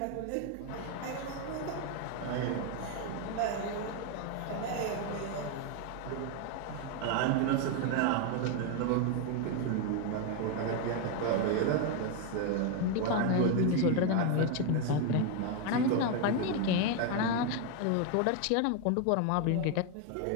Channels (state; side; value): different; both; correlation 0.01